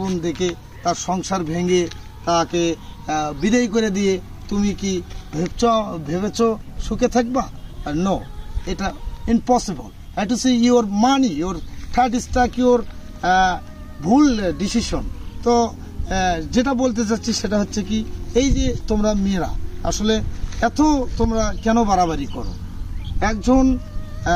দেখে তার সংসার ভেঙে তাকে বিদায় করে দিয়ে তুমি কি ভেবেছ সুখে থাকবা? নো, এটা impossible. Have to see your money, your third stack, your ভুল ডিসিশন। তো যেটা বলতে চাচ্ছি সেটা হচ্ছে কি, এই যে তোমরা মেয়েরা আসলে এত তোমরা কেন বাড়াবাড়ি করো? একজন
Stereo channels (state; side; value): identical; both; correlation 1.00